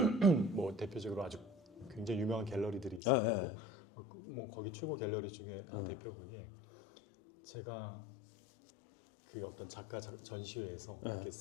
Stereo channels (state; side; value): drops out; right; at 3.0 s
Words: 뭐 대표적으로 아주 굉장히 유명한 갤러리들이 있어요. 뭐 거기 최고 갤러리 중에 한 대표분이 제가 그 어떤 작가 전시회에서 이렇게